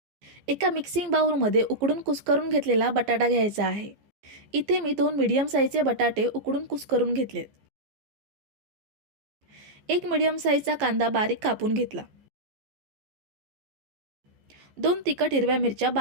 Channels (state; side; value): late; left; 14 ms